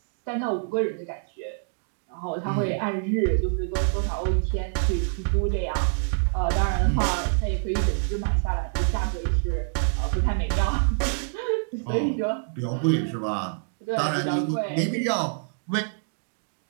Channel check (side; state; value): left; silent; digital silence